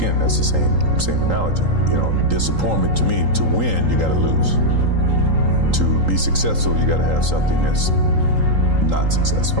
that's the same analogy. You know, disappointment to me, to win, you gotta lose. To be successful, you gotta have something that's not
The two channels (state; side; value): late; left; 3.8 ms